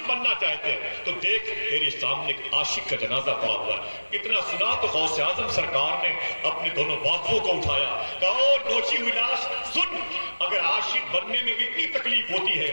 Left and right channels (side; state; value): both; inverted; correlation -1.00